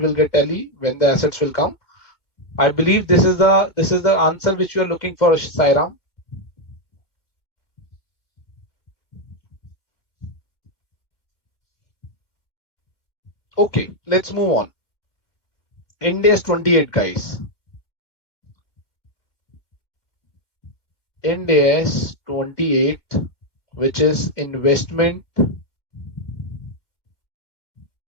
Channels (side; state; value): right; late; 2.2 ms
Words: get tally when the assets will come. I believe this is the answer which you are looking for, Sairam. Okay, let's move on. Ind AS 28, guys. Ind AS 28, which is investment